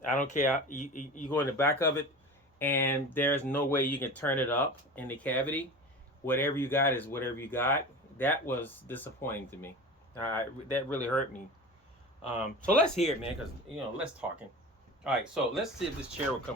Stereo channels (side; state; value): both; normal; correlation 0.32